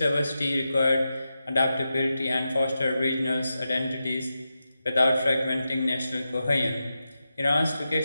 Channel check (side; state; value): both; inverted; correlation -0.90